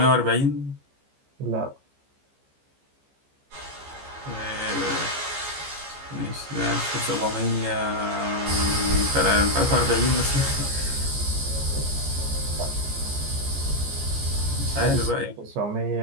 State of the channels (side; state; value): left; late; 15 ms